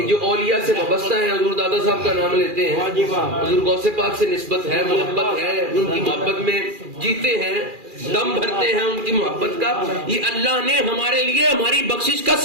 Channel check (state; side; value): late; left; 2.4 ms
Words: جو اولیاء سے وابستہ ہیں، حضور دادا صاحب کا نام لیتے ہیں، حضور غوث پاک سے نسبت ہے، محبت ہے، ان کی محبت میں جیتے ہیں، دم بھرتے ہیں ان کی محبت کا، یہ اللہ نے ہمارے لیے ہماری بخشش کا